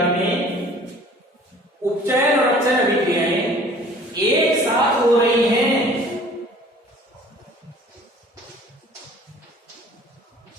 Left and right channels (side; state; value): both; normal; correlation 0.50